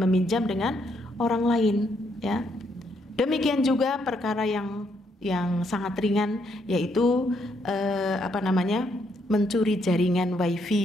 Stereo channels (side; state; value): both; normal; correlation 0.74